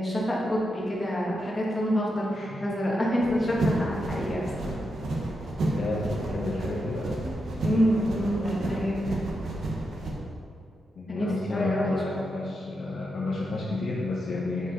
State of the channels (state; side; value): normal; both; correlation 0.85